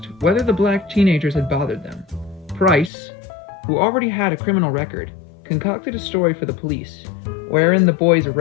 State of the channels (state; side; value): drops out; right; at 2.9 s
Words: whether the black teenagers had bothered them. Price, who already had a criminal record, concocted a story for the police, wherein the boys